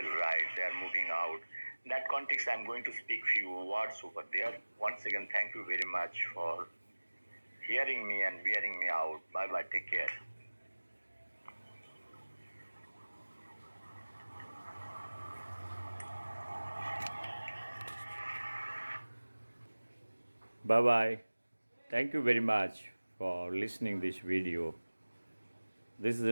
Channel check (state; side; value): inverted; both; correlation -1.00